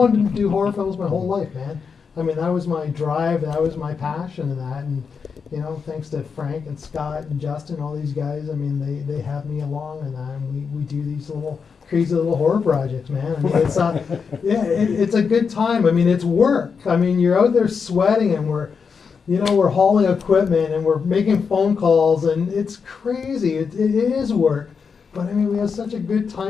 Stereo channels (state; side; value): quieter; right; 5.8 dB